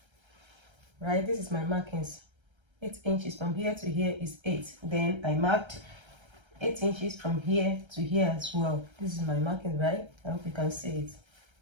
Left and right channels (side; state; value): left; late; 1.3 ms